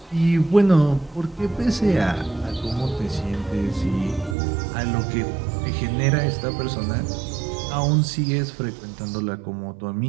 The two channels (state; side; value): drops out; left; at 4.4 s